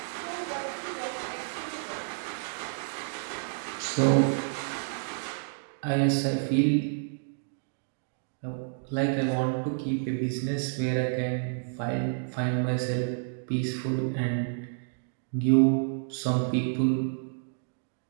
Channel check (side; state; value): left; silent; digital silence